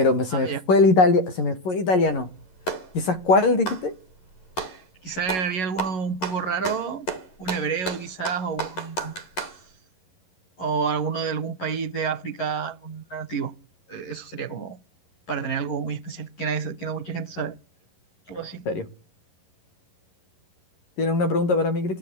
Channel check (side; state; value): right; late; 11 ms